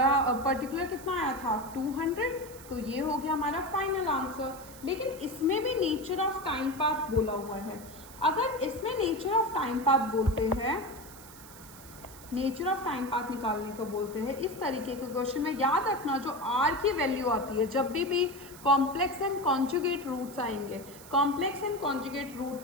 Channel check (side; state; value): right; noise; hiss, 18 dB below the sound